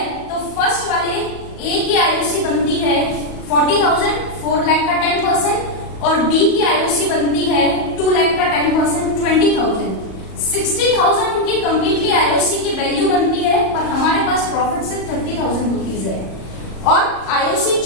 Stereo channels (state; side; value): late; right; 38 ms